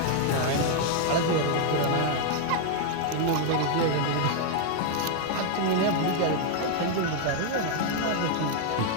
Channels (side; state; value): both; different; correlation 0.00